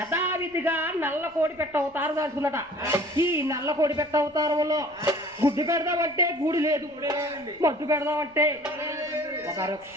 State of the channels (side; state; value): left; noise; rumble, 29 dB below the sound